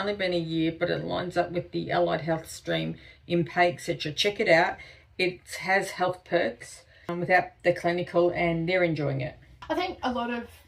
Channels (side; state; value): both; identical; correlation 1.00